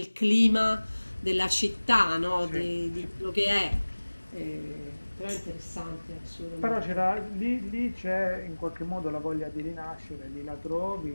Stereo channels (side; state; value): both; inverted; correlation -1.00